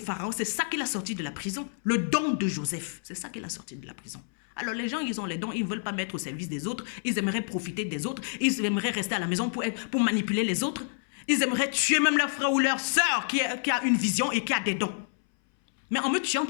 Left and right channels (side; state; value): right; silent; 59 dB below the other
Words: Pharaon, c'est ça qu'il a sorti de la prison. Le don de Joseph, c'est ça qu'il a sorti de la prison. Alors les gens, ils ont les dons, ils ne veulent pas mettre au service des autres. Ils aimeraient profiter des autres. Ils aimeraient rester à la maison pour manipuler les autres. Ils aimeraient tuer même leur frère ou leur soeur qui a une vision et qui a des dons. Mais en me tuant,